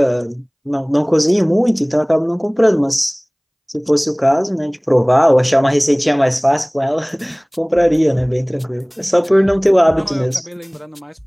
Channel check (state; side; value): identical; both; correlation 1.00